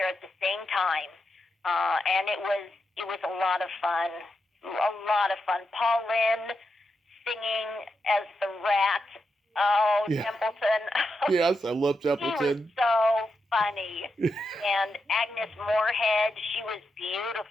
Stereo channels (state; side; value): normal; both; correlation 0.86